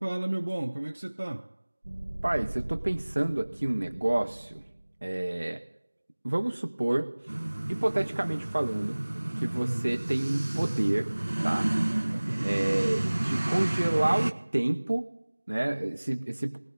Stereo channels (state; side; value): inverted; both; correlation -1.00